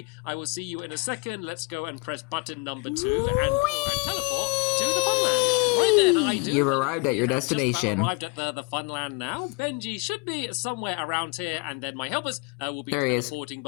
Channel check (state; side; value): quieter; right; 27.7 dB